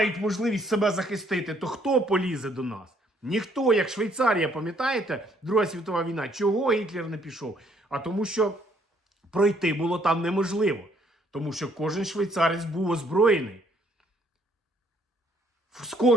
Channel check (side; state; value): both; normal; correlation 0.66